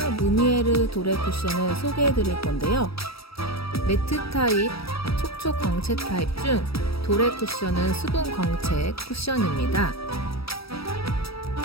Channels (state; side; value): late; right; 0.76 ms